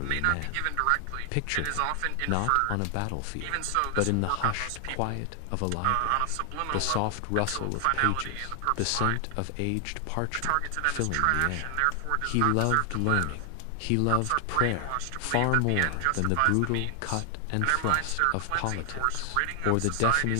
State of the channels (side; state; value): both; different; correlation 0.00